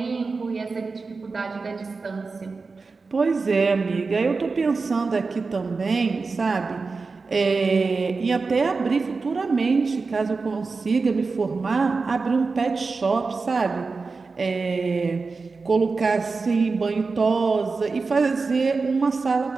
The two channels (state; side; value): quieter; left; 4.3 dB